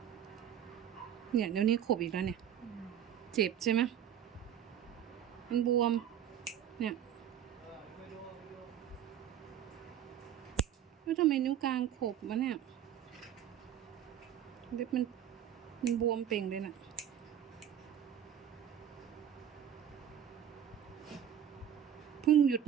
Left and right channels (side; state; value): left; quieter; 9.7 dB